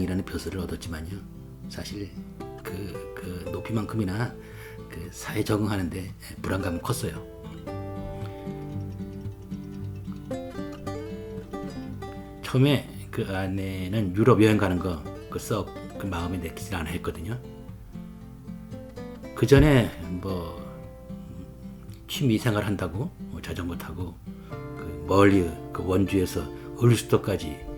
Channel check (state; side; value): identical; both; correlation 1.00